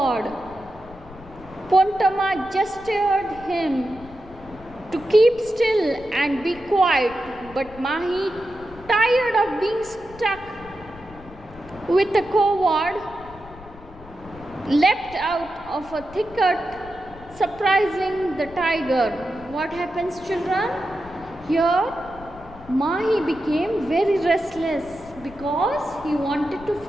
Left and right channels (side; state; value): left; noise; rumble, 19 dB below the sound